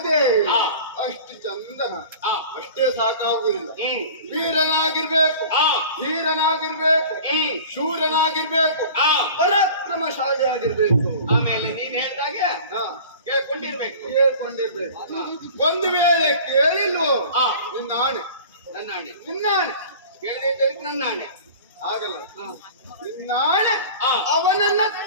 ಅಷ್ಟು ಚಂದನ ಅಷ್ಟೇ ಸಾಕಾಗುವುದಿಲ್ಲ. ವೀರನಾಗಿರ್ಬೇಕು, ಧೀರನಾಗಿರ್ಬೇಕು, ಶೂರನಾಗಿರ್ಬೇಕು, ಪರಾಕ್ರಮಶಾಲಿ ಆಗಿರ್ಬೇಕು. ಆಮೇಲೆ ನೀನ್ ಹೇಳ್ದಾಗೆ ಕೇಳ್ಕೊಂಡಿರ್ಬೇಕು. ಒಂದು ವೇಳೆ ಕೇಳಿಲ್ವೋ ನಿನ್ನ ಆಣೆ, ನನ್ನ ಆಣೆ, ನಿನ್ನ ಆಣೆ ಕೇಳದೆ ನನ್ನ ಆಣೆ ಆಗಲ್ಲ. ನಿನ್ನ ಆಣೆ ಅವನನ್ನ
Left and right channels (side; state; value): both; inverted; correlation -0.41